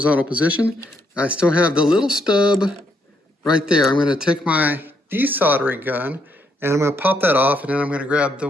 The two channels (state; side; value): normal; both; correlation 0.74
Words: position. I still have the little stub right there. I'm going to take my desoldering gun and I'm going to pop that off, and then I'm going to grab the